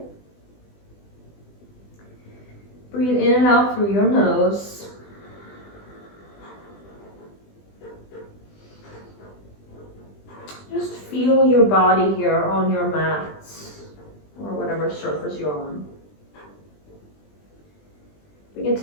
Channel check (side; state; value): right; late; 20 ms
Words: Breathe in and out through your nose. Just feel your body here on your mat or whatever surface you're on. Bring